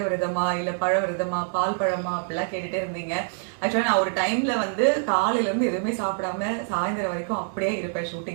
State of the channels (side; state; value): left; silent; 61 dB below the other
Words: விரதமா இல்ல பழ விரதமா பால் பழமா அப்படிலாம் கேட்டுட்டே இருந்தீங்க. ஆக்சுவலா நான் ஒரு டைம்ல வந்து காலையில இருந்து எதுவுமே சாப்பிடாம சாயந்தரம் வரைக்கும் அப்படியே இருப்பேன்.